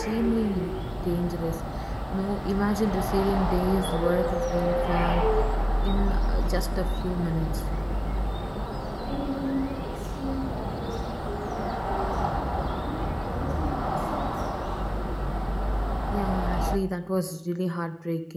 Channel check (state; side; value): identical; both; correlation 1.00